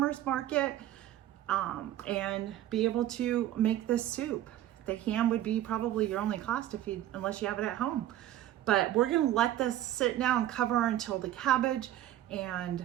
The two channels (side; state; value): left; quieter; 13.0 dB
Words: market, and be able to make this soup. The ham would be probably your only cost unless you have it at home. But we're gonna let this sit now and cover until the cabbage